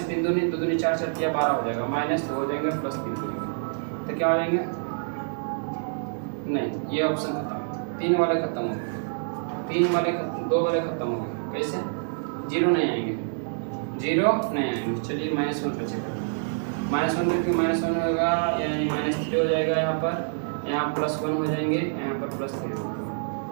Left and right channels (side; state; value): left; silent; digital silence